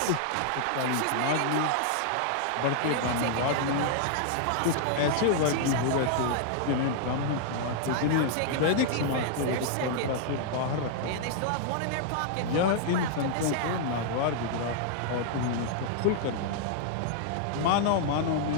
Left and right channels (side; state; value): both; different; correlation -0.01